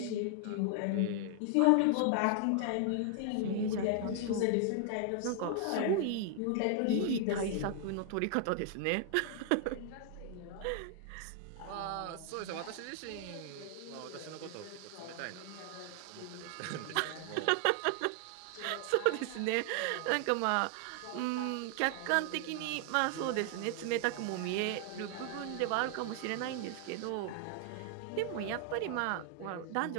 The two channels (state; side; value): different; both; correlation 0.00